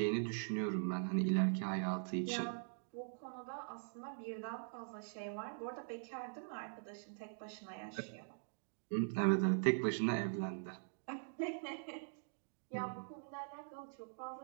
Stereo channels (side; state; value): left; silent; digital silence